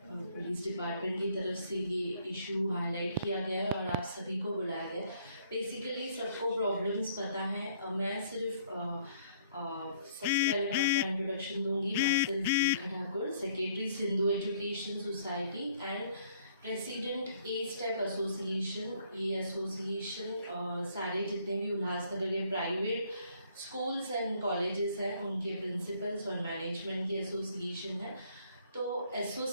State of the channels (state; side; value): inverted; both; correlation -0.63